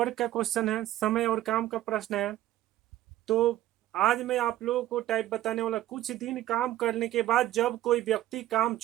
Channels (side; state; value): left; quieter; 14.2 dB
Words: का question है, समय और काम का प्रश्न है। तो आज मैं आप लोगों को टाइप बताने वाला, कुछ दिन काम करने के बाद जब कोई व्यक्ति काम